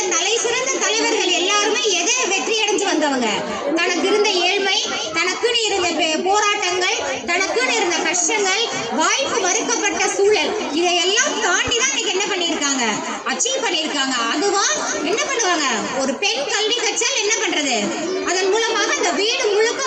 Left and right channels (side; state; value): both; identical; correlation 1.00